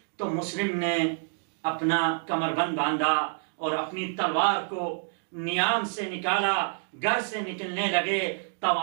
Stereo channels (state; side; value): silent; left; 56 dB below the other